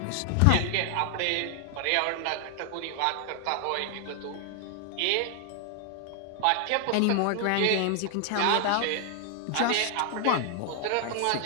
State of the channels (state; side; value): different; both; correlation 0.00